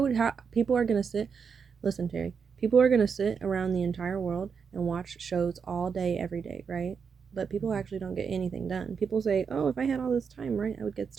people are going to sit, listen, Terry, people are going to sit around the entire world and watch shows all day, every day, right? But people actually don't get anything done. People say, oh, if I had all this time, right, I would get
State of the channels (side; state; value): left; quieter; 6.1 dB